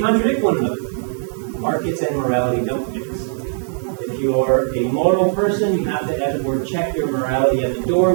one another. Markets and morality don't mix. If you're a moral person, you have to, as it were, check your morality at the door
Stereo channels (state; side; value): silent; left; digital silence